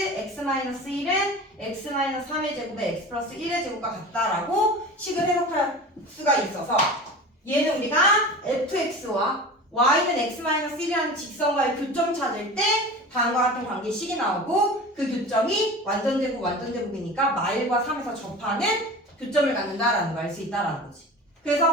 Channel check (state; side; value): normal; both; correlation 0.35